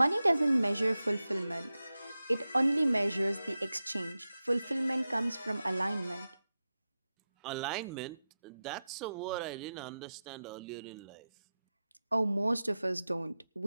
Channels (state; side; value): inverted; both; correlation -0.93